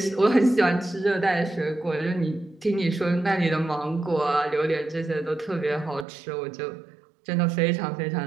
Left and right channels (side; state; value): left; drops out; at 6.1 s